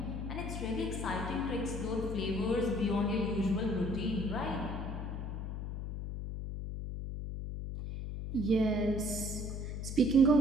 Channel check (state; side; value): noise; left; hum, 5 dB below the sound